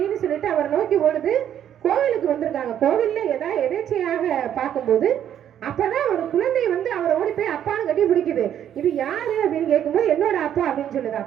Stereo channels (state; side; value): quieter; left; 10.1 dB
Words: சொல்லிட்டு அவர் நோக்கி ஓடுது. கோவிலுக்கு வந்திருக்காங்க. கோவில்ல ஏதாவது எதேச்சையாக பார்க்கும்போது அப்பதான் ஒரு குழந்தை வந்து அவரை ஓடி போய் அப்பான்னு கட்டி பிடிக்குது. இது யாரு அப்படின்னு கேட்கும்போது என்னோட அப்பா அப்படின்னு சொல்லுது.